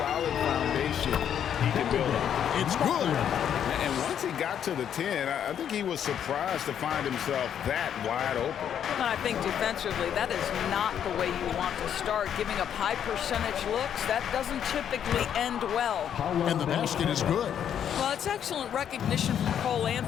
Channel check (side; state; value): right; quieter; 9.1 dB